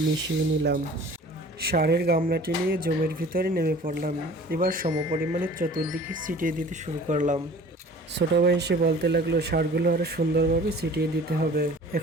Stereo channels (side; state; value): both; normal; correlation 0.46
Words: নিলাম। সারের গামলাটি নিয়ে জমির ভিতরে নেমে পড়লাম। এবার সমপরিমাণে চতুর্দিকে ছিটিয়ে দিতে শুরু করলাম। ছোট ভাই এসে বলতে লাগলো, সারগুলো আরো সুন্দরভাবে ছিটিয়ে দিতে হবে।